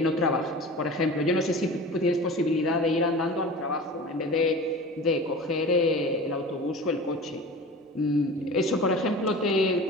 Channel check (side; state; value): both; normal; correlation 0.36